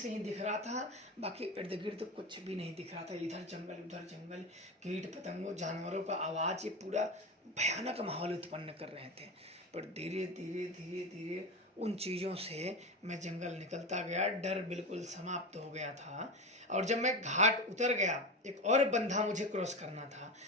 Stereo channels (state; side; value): normal; both; correlation 0.22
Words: ही दिख रहा था, बाकी इर्द गिर्द कुछ भी नहीं दिख रहा था। इधर जंगल उधर जंगल, कीट पतंगों जानवरों का आवाज़, ये पूरा भयानक माहौल उत्पन्न कर रहे थे। पर धीरे धीरे धीरे धीरे उन चीज़ों से मैं जंगल निकलता गया, डर बिल्कुल समाप्त हो गया था। और जब मैं घाट उतर गया, एक और बंधा मुझे क्रॉस करना था,